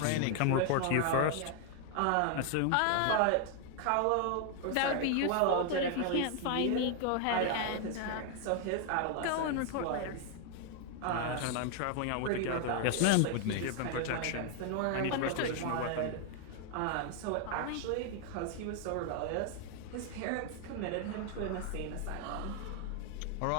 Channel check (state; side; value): different; both; correlation 0.00